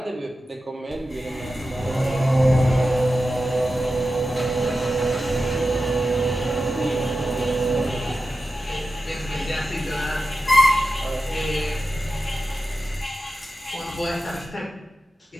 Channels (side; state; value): both; normal; correlation 0.92